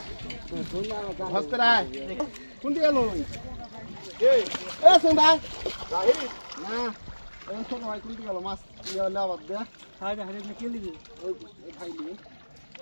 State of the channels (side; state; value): both; inverted; correlation -1.00